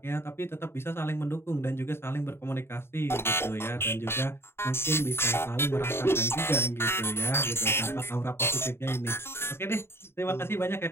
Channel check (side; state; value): right; late; 0.12 ms